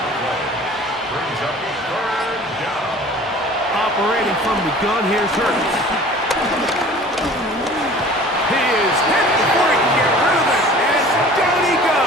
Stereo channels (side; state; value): both; normal; correlation 0.45